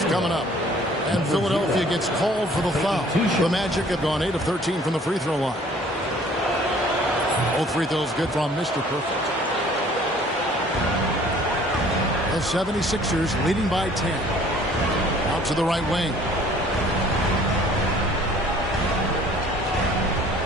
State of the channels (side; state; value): both; normal; correlation 0.54